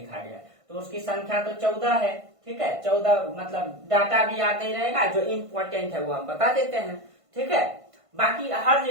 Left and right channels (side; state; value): left; late; 1.5 ms